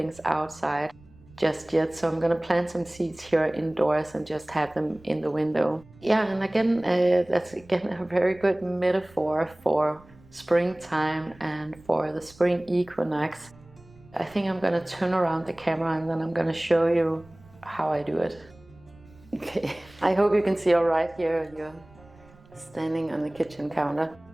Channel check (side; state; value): right; noise; rumble, 25 dB below the sound